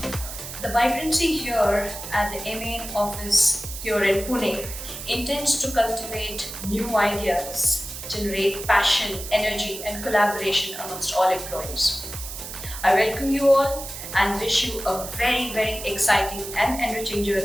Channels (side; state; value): right; noise; hiss, 9 dB below the sound